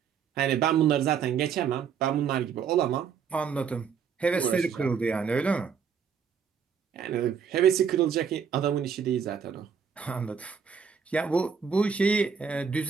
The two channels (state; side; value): quieter; left; 6.8 dB